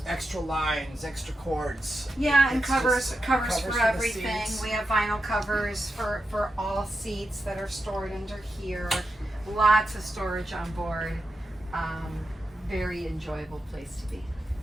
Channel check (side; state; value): both; normal; correlation 0.88